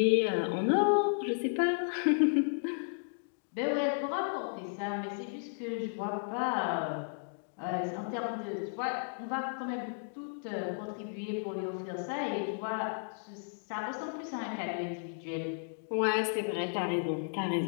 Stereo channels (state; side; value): silent; right; digital silence